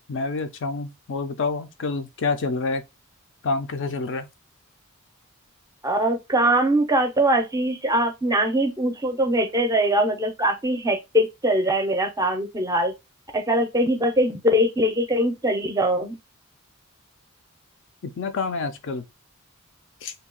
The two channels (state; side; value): normal; both; correlation 0.27